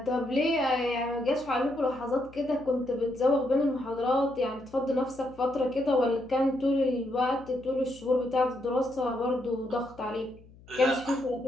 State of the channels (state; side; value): noise; left; hum, 23 dB below the sound